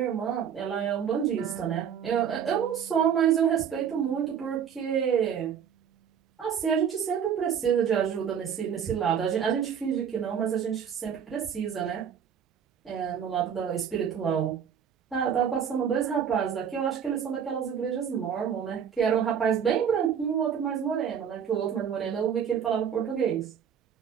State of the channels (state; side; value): quieter; left; 8.0 dB